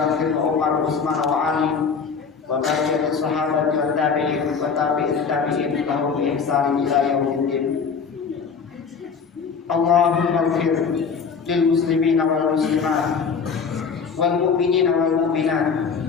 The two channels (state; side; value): quieter; right; 5.8 dB